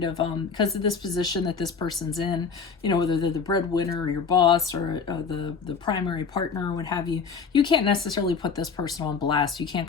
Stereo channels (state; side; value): quieter; right; 5.6 dB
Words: of, because of this position that this person's in, whether they're the breadwinner or your boss or the primary partner or what have you, you can't necessarily put this person on blast. You can't